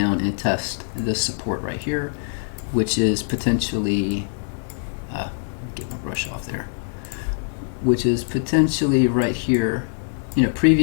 and test this support right here, which is potentially, get my brush off there, which is potentially right here. You know,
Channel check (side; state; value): right; silent; 62 dB below the other